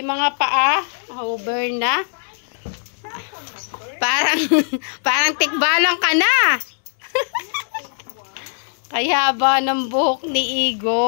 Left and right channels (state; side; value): silent; right; digital silence